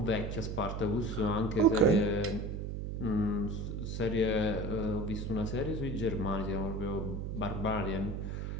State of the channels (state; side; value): noise; right; hum, 4 dB below the sound